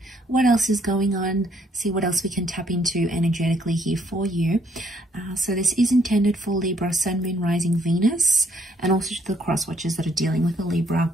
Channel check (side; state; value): both; normal; correlation 0.68